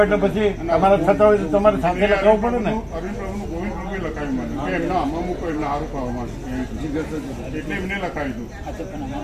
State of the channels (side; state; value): both; identical; correlation 1.00